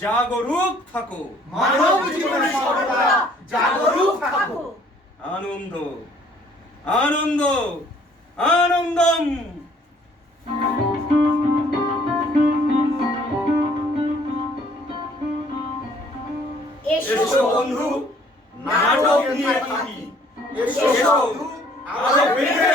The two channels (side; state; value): both; normal; correlation 0.59